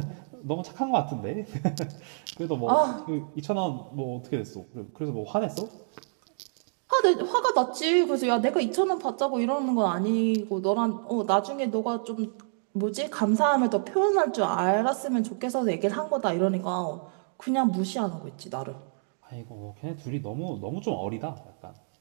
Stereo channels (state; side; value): silent; left; digital silence